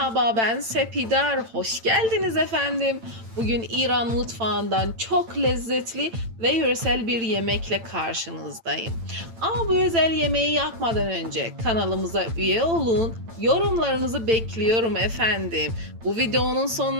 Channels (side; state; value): left; late; 8.9 ms